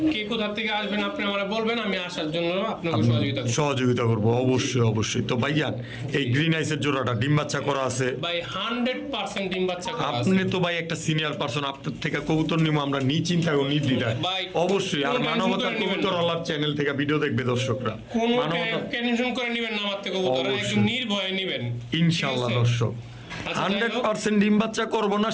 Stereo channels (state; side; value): identical; both; correlation 1.00